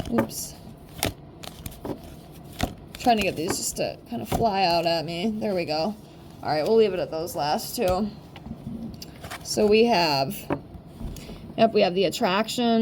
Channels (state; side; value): identical; both; correlation 1.00